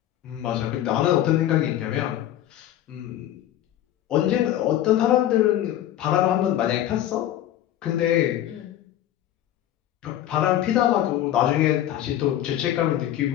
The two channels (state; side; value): quieter; right; 12.4 dB